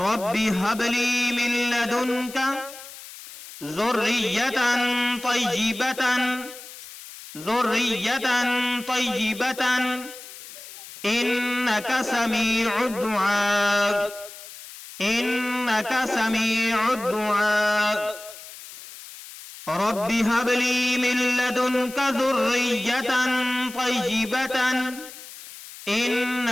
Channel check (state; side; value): noise; left; hiss, 15 dB below the sound